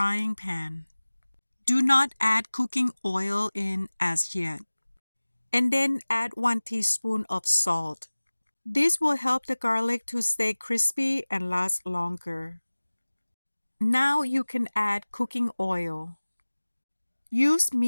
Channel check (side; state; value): both; inverted; correlation -1.00